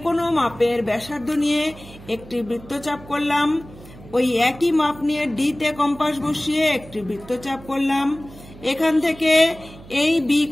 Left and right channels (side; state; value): right; noise; hum, 19 dB below the sound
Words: কোনো মাপের ব্যাসার্ধ নিয়ে একটি বৃত্তচাপ করলাম। ওই একই মাপ নিয়ে ডি তে কম্পাস বসিয়ে একটি বৃত্তচাপ করলাম। এখান থেকে এই বি